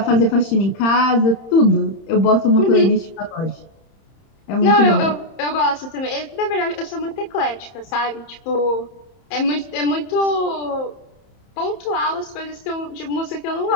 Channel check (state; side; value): late; right; 30 ms